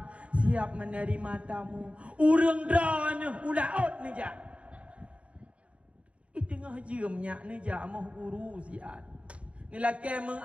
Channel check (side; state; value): left; late; 0.062 ms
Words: Siap menerima tamu. Urang dah ni ulaut ni jak. Tengah jemnya ni jak amah guru siat. Ni laki